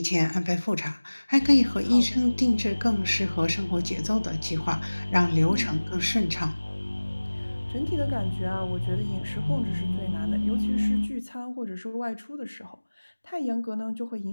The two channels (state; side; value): inverted; both; correlation -1.00